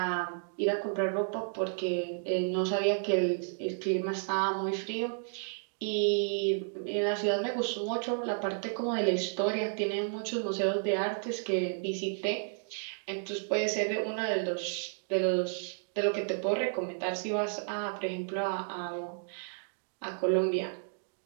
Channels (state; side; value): silent; left; digital silence